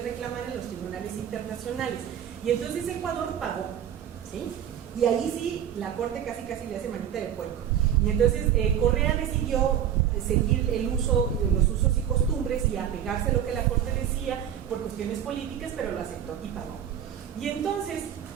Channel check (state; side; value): quieter; left; 9.7 dB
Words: reclamar en los tribunales internacionales. Y entonces Ecuador pagó, ¿sí? Y ahí sí, la Corte casi le hace manita de puerco. Y entonces Correa decidió seguir los usos y costumbres y apegarse a lo que la Corte decía por cuestiones políticas, pero lo aceptó y pagó. Y entonces,